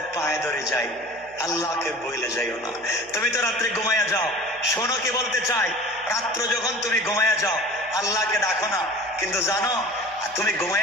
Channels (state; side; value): noise; left; hum, 27 dB below the sound